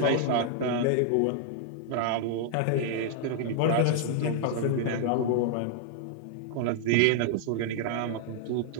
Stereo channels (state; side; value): different; both; correlation -0.01